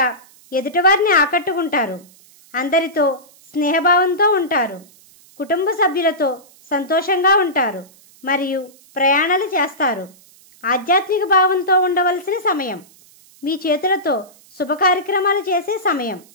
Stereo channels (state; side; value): noise; right; hiss, 27 dB below the sound